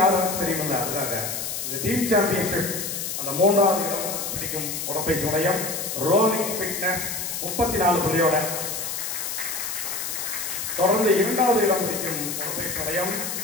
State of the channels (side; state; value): left; noise; hiss, 4 dB below the sound